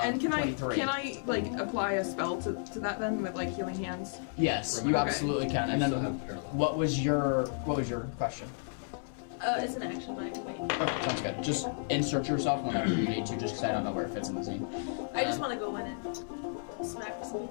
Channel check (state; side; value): silent; right; 56 dB below the other